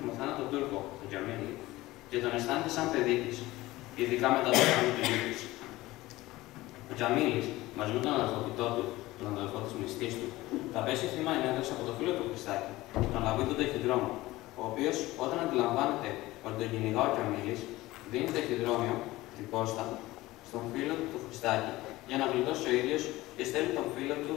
μοθάνατο Τούρκο, τον Τζαμίλη, και τον αισθάνεται σαν παιδί τη, ειδικά μετά το θάνατο του γιου της. Ο Τζαμίλης, μαζί με τον αδελφοποιητό του, τον αδελφό της μνηστής του, θα πέσει θύμα ενέργειας από το φίλο του Χριστάκη, τον Λαβίδο Ταχυδρόμο, ο οποίος, όταν αντιλαμβάνεται ότι τον κυνηγά ο Τζαμίλης, δίνει ταχυδρόμιο, την πόστα, στον φίλο του του Χριστάκη, για να γλιτώσει ο ίδιος και στέλνει τον φίλο του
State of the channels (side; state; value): right; quieter; 18.4 dB